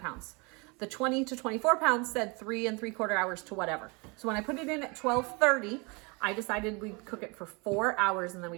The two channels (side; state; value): left; quieter; 29.6 dB